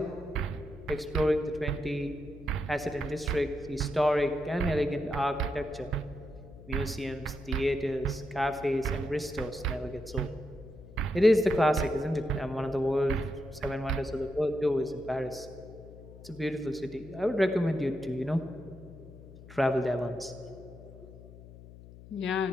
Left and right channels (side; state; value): left; noise; hum, 18 dB below the sound